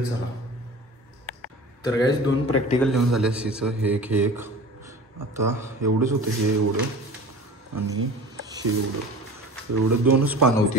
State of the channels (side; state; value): both; normal; correlation 0.39